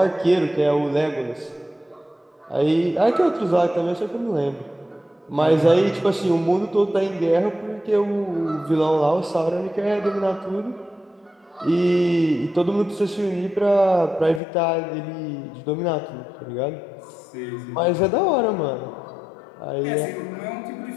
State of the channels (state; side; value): drops out; right; at 14.4 s